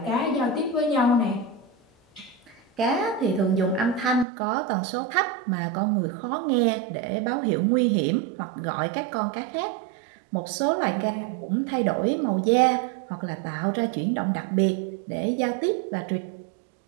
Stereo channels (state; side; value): drops out; left; at 4.2 s